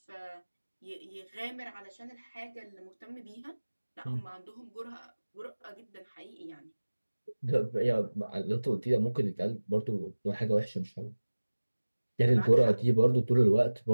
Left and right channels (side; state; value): both; inverted; correlation -1.00